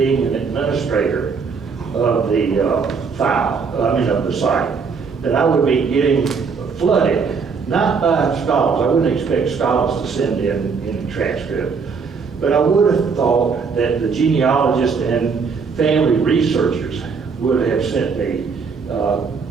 an administrator of the of the site, that I would be getting flooded, not by scholars. I wouldn't expect scholars to send in a transcript, but I would have thought that the genealogists and family researchers would have sent me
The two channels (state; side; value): quieter; left; 5.4 dB